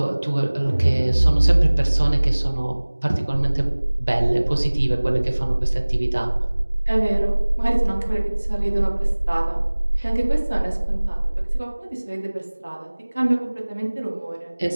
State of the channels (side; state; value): both; inverted; correlation -1.00